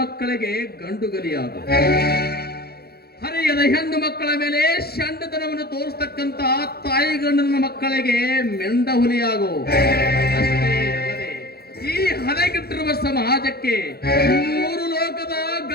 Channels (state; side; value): late; right; 0.46 ms